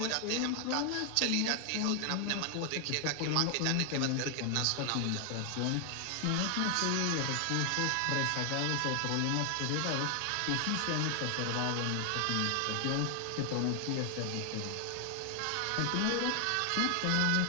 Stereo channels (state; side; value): different; both; correlation 0.00